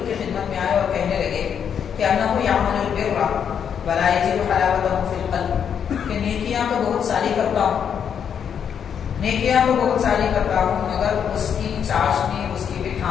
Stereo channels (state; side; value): quieter; right; 7.9 dB